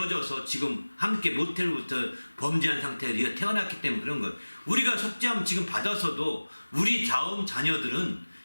지금 함께 모태로부터 범죄한 상태에서 우리가 태어났기 때문에 그런 것. 우리가 속죄함 지금 받아서도 우리 다음 자녀들은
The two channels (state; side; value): inverted; both; correlation -1.00